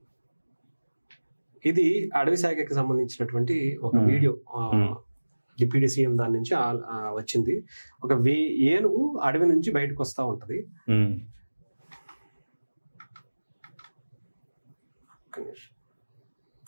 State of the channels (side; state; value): both; inverted; correlation -1.00